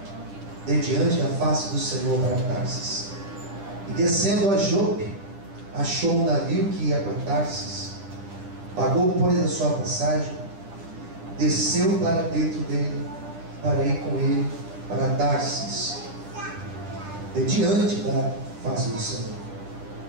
de diante da face do Senhor para Tarsis, e descendo a Jope, achou um navio que ia para Tarsis, pagou, pois, a sua passagem, desceu para dentro dele, para ir com ele para Tarsis, de diante da face do Senhor.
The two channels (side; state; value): left; late; 10 ms